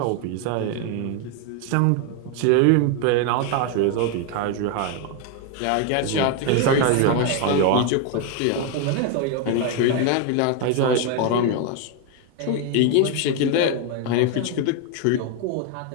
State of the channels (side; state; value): both; different; correlation 0.01